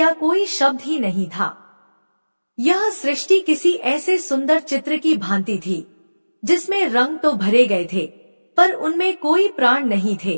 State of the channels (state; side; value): inverted; both; correlation -1.00